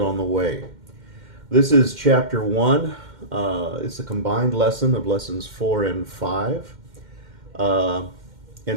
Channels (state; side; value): late; left; 2.1 ms